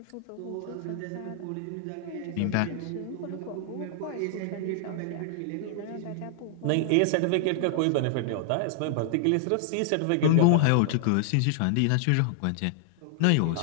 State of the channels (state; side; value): different; both; correlation 0.00